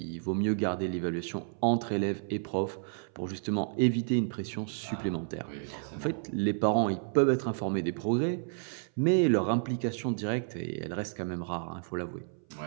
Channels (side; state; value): left; silent; 57 dB below the other